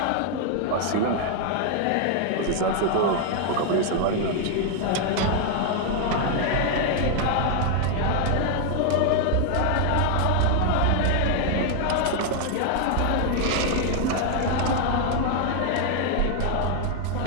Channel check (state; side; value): different; both; correlation 0.00